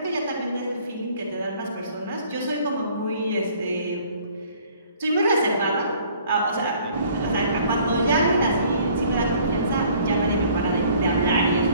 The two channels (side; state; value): both; inverted; correlation -0.57